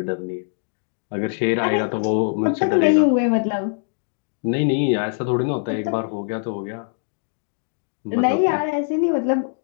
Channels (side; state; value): right; silent; digital silence